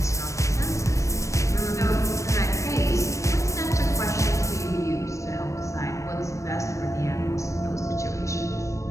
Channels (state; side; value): late; right; 0.15 ms